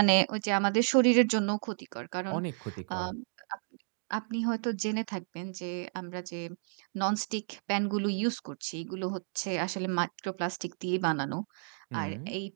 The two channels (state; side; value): silent; left; digital silence